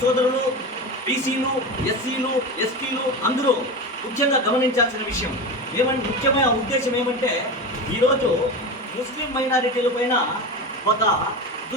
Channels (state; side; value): normal; both; correlation 0.24